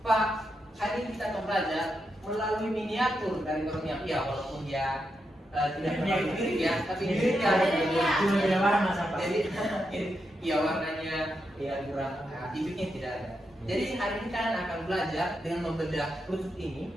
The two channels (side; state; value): both; normal; correlation 0.85